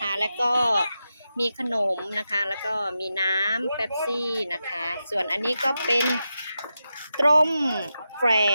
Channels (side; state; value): both; inverted; correlation -0.89